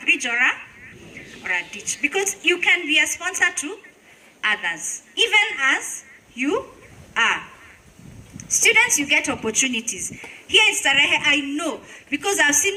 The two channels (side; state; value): both; identical; correlation 1.00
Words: bridge or a ditch. Because you can be a sponsor to others, even as you are. Students, you get opportunities. Here in Starehe, I know, because I've